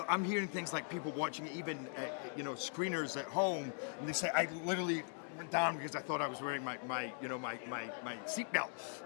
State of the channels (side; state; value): right; silent; 51 dB below the other